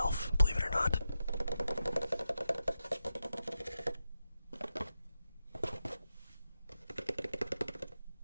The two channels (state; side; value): inverted; both; correlation -0.89